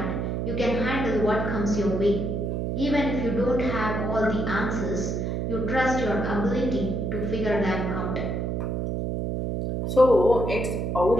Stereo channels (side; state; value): right; noise; hum, 1 dB below the sound